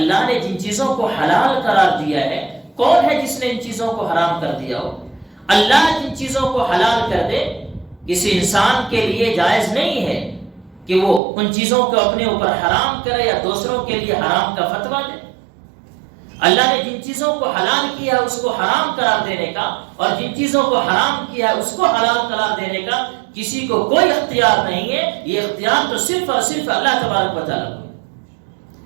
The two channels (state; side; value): drops out; left; at 11.2 s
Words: نے جن چیزوں کو حلال قرار دیا ہے، کون ہے جس نے ان چیزوں کو حرام کر دیا ہو. اللہ جن چیزوں کو حلال کر دے، کسی انسان کے لیے جائز نہیں ہے کہ وہ ان چیزوں کو اپنے اوپر حرام کرے یا دوسروں کے لیے حرام کا فتویٰ دے. اللہ نے جن چیزوں کو حلال کیا ہے اس کو حرام قرار دینے کا، اور جن چیزوں کو حرام کیا ہے اس کو حلال قرار دینے کا کسی کو کوئی اختیار نہیں ہے. یہ اختیار تو صرف اور صرف اللہ تبارک و تعالیٰ کو.